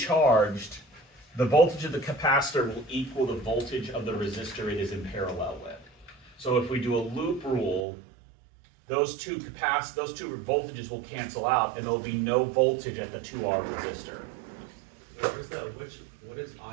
the voltage of the capacitor will equal the voltage of the resistor it is in parallel with. So if we do a loop rule, those two voltages will cancel out, and there'll be no voltage at the 2R resistor. What is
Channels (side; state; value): left; drops out; at 7.9 s